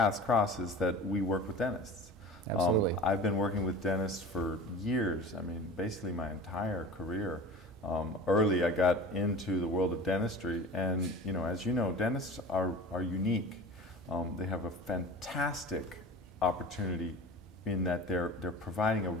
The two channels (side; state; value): both; normal; correlation 0.36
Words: cross, is that we work with dentists. Absolutely. I've been working with dentists for years. I mean, basically my entire career. Early, I got into the world of dentistry, and as you know, dentists are unique. They have a fantastic opportunity in that they're providing a